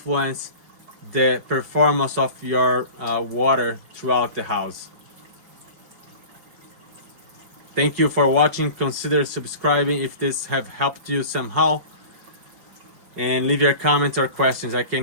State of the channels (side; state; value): left; late; 5.4 ms